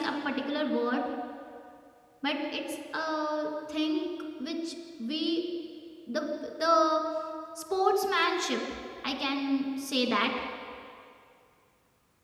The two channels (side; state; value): both; identical; correlation 1.00